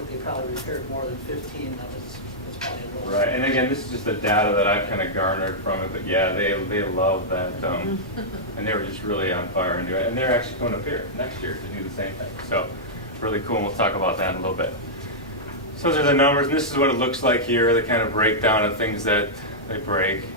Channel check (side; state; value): both; normal; correlation -0.09